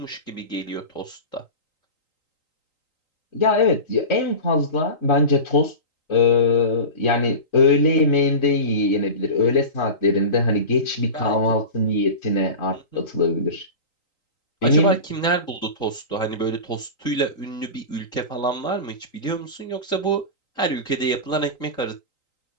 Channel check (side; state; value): right; late; 3.9 ms